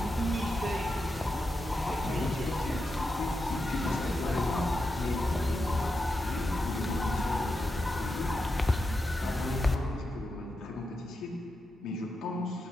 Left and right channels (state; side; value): normal; both; correlation 0.88